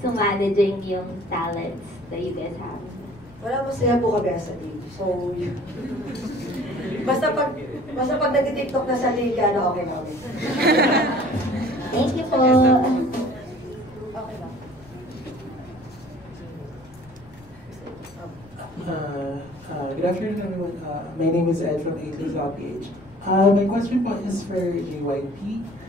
So, managing yung talents that you guys have. Wala, masaya po kami sa team. So, basta pag nag-tiktok na sa liga, okay na kami. Thank you po. Okay ba? Good afternoon, everyone. My name is Ed from A3.ph. My question po is for JYP.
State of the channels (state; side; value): noise; left; rumble, 24 dB below the sound